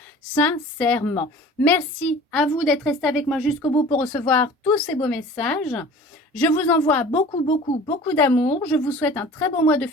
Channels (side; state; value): both; normal; correlation 0.43